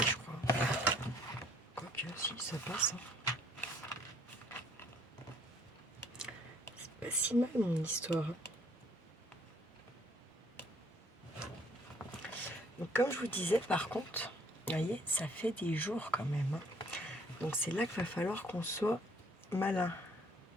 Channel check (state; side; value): normal; both; correlation 0.61